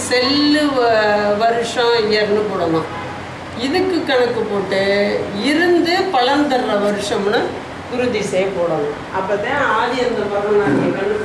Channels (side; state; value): both; identical; correlation 1.00